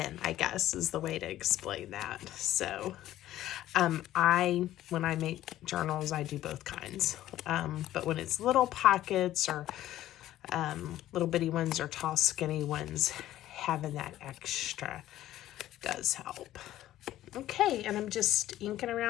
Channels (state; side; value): quieter; right; 13.7 dB